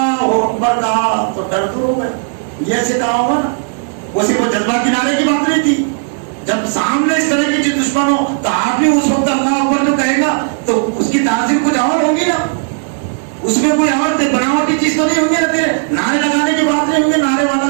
اکبر کہا تو ڈر دور ہو گیا. یہ ایسے کہا ہوگا نا، وہ صرف جذبہ کنارے کی بات نہیں تھی. جب سامنے اس طرح کی چیز دشمن ہو تو آپ بھی اس وقت اللہ اکبر جو کہے گا تو اس کی تاثیر کچھ اور ہوگی نا، اس میں کوئی اور بناوٹی چیز تو نہیں ہوگی نا. تیرے نعرے لگانے کی بات نہیں ہوگی، نعرے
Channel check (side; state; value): left; silent; digital silence